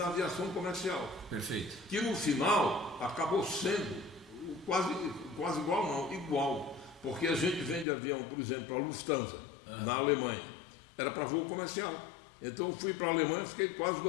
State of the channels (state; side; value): drops out; right; at 7.9 s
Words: aviação comercial. Perfeito. Que no final acabou sendo quase igual, não, igual. Porque a gente vende avião, por exemplo, a Lufthansa, na Alemanha. Era para voo comercial. Então eu fui para a Alemanha, fiquei quase